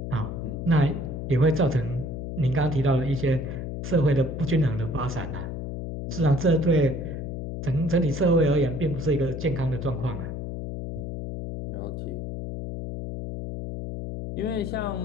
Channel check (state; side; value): noise; left; hum, 5 dB below the sound